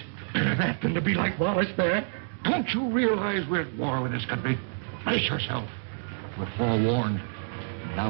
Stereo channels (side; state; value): left; silent; digital silence